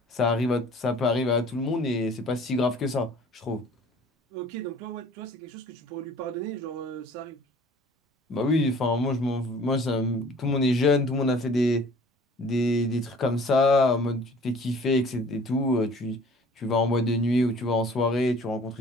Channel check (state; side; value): normal; both; correlation 0.50